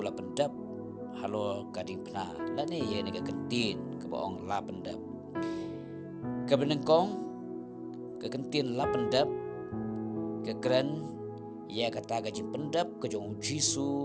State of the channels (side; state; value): both; identical; correlation 1.00